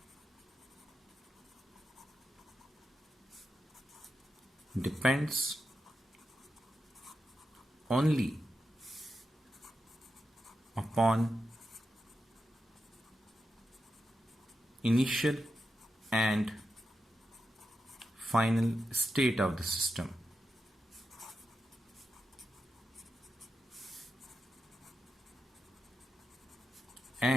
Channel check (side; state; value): both; normal; correlation 0.88